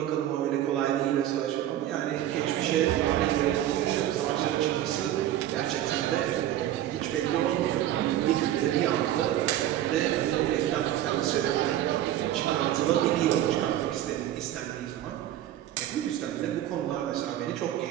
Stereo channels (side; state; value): left; quieter; 12.5 dB